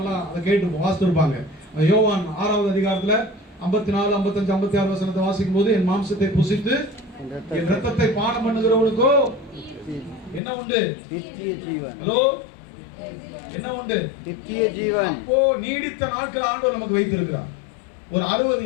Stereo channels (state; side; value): drops out; right; at 10.4 s